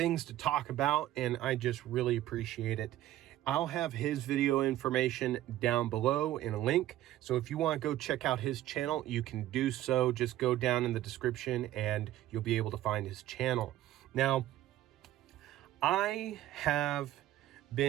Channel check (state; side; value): quieter; left; 13.9 dB